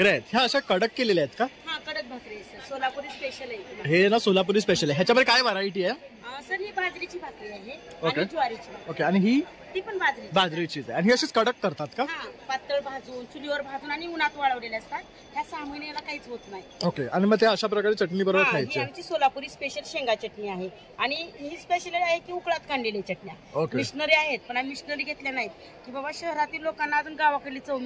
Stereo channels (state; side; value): identical; both; correlation 1.00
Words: आहेत. ह्या अशा कडक केलेल्या आहेत का? हाँ, कडक भाकरी आहे सर. सोलापुरी स्पेशल आहे. हे ना सोलापुरी स्पेशल आहे. ह्याच्यामध्ये काय व्हरायटी आहे? सर ही बाजरीची भाकरी आहे ओके. आणि ज्वारीची भाकरी. ओके, आणि ही ती पण बाजरी बाजरीचीच आहे. आणि ही अशीच कडक करतात का? हा, पातळ भाजून चुलीवर भाजून आणि उन्हात वाळवलेले असतात. ह्या 6 महिन्याला काहीच होत नाही. ओके, आणि मग ते अशा प्रकारे चटणी बरोबर ही खायची. आमची सोलापुरी स्पेशल शेंगा चटणी आहे आणि ही स्पेशल आहे की उकळात काढलेल्या चटण्या. ओके. मिशनरी आहेत पण आम्ही मिशनरी घेतल्या नाहीत की बाबा शहरातील लोकांना अजून गावाकडली चव